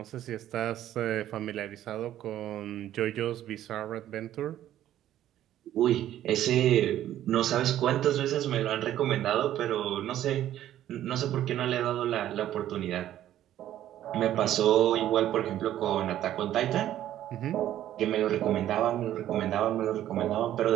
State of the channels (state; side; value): quieter; left; 12.3 dB